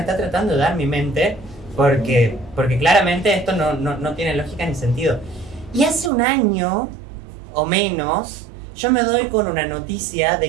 tratando de dar mi mente? Porque claramente esto no tiene lógica ni sentido. Y hace un año o menos, yo me doy con una noticia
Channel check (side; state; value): left; drops out; at 6.1 s